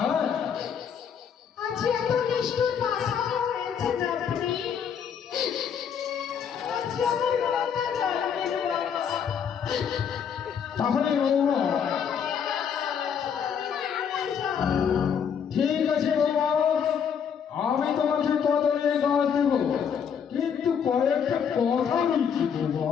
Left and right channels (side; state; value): right; quieter; 7.5 dB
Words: আজ এত নিষ্ঠুর ভাষা হয়েছে আপনি। আজ আমার কথা জানবেন বাবা। তাহলে বৌমা ঠিক আছে বৌমা, আমি তোমাকে কদমের গাছ দেব, কিন্তু কয়েকটা কথা বলছি বৌমা।